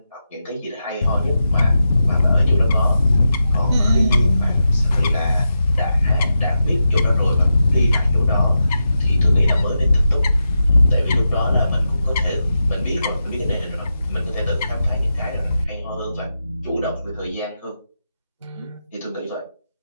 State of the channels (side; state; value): both; inverted; correlation -0.88